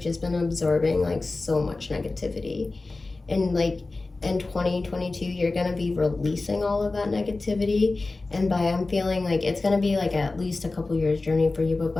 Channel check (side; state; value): right; quieter; 3.4 dB